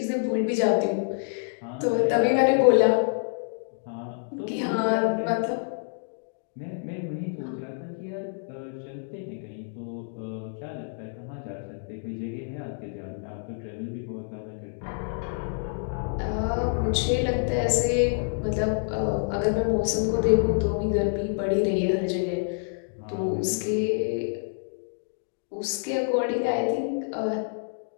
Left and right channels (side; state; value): right; silent; digital silence